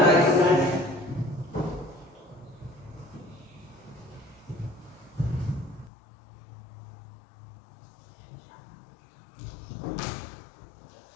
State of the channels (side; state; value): right; drops out; at 5.9 s